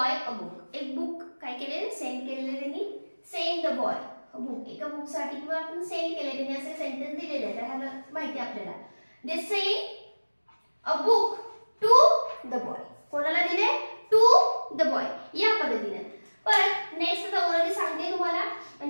a book. एक बुक काय केले, सेंड केलेले त्यांनी. send the boy a book. एका बुक साठी किंवा आपण सेंड केले, त्यांनी असे सेंटेन्स दिलेले आहेत, ह्याला माहिती आपल्याला. they send a book to the boy. कोणाला दिले, टू द बॉय या पद्धतीने. परत नेक्स्ट आता ऑलरेडी सांगते तुम्हाला,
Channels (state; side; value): inverted; both; correlation -1.00